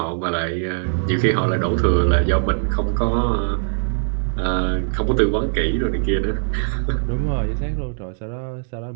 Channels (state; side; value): silent; left; digital silence